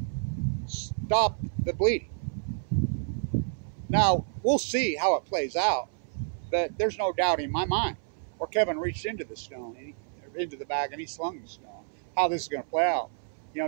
stop the bleeding. Now, we'll see how it plays out, but there's no doubt in my mind. Or Kevin reached into the stone, into the bag, and he slung the stone. How this is going to play out. You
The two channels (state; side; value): silent; left; 58 dB below the other